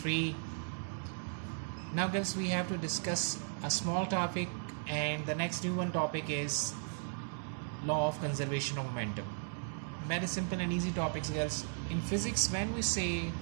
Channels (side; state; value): left; silent; digital silence